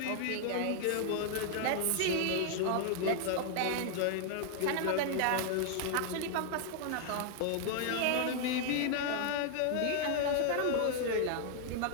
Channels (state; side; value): different; both; correlation 0.00